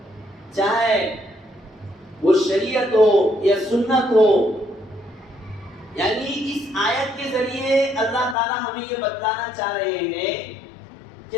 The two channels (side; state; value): right; drops out; at 8.3 s